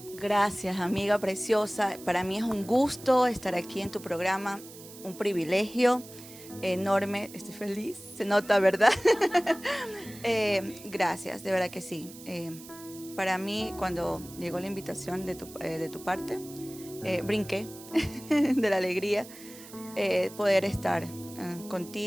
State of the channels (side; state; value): right; noise; hiss, 17 dB below the sound